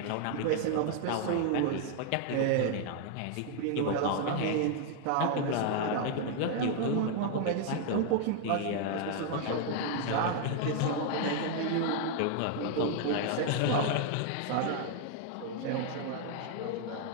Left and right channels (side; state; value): both; different; correlation 0.00